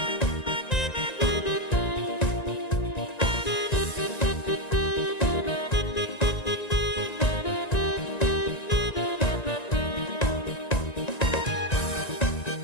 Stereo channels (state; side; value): late; right; 1.9 ms